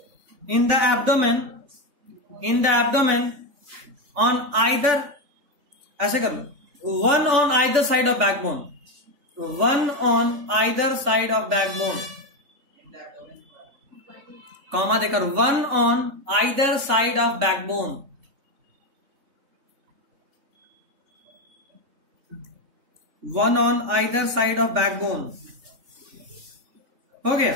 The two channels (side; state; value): left; late; 3.5 ms